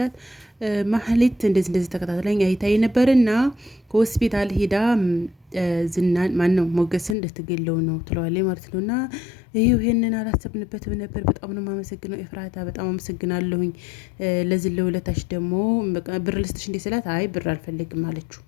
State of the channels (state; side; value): drops out; right; at 7.2 s